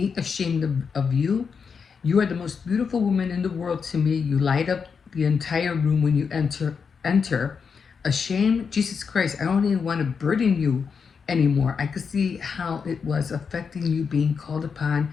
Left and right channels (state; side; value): quieter; right; 5.9 dB